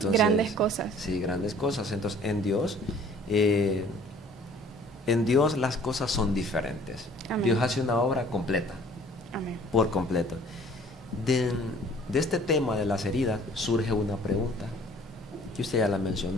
grandes cosas. Sí, grandes cosas. Entonces, en Dios las cosas son diferentes. Amén. Dios hace una obra completa. Amén. Por completo. De este tema de las heridas surge una pregunta que usted ya la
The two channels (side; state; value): both; normal; correlation 0.53